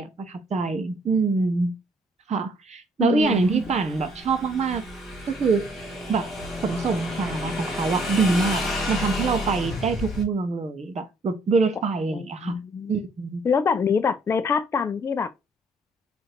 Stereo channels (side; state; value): both; normal; correlation 0.64